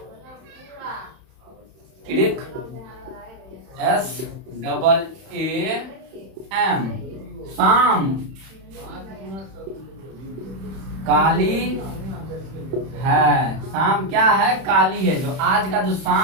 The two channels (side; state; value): left; late; 31 ms